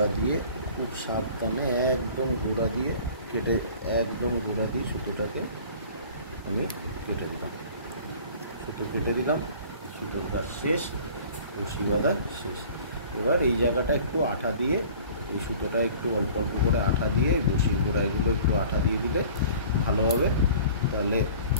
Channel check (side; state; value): both; inverted; correlation -0.47